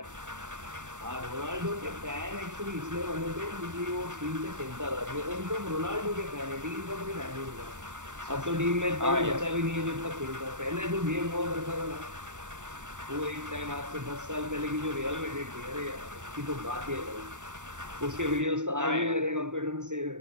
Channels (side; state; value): left; late; 0.85 ms